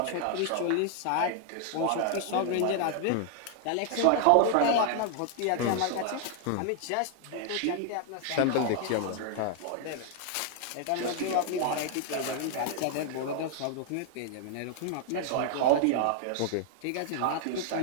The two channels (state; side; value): different; both; correlation 0.00